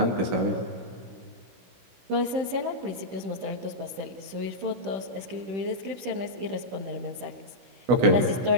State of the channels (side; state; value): left; late; 16 ms